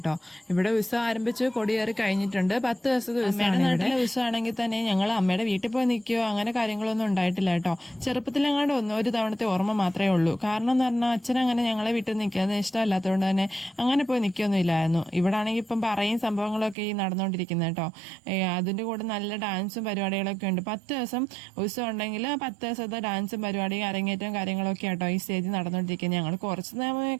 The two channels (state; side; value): drops out; left; at 16.8 s